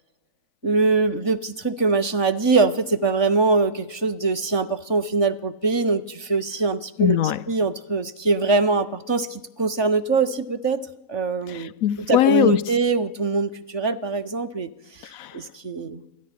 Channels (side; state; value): right; late; 3.5 ms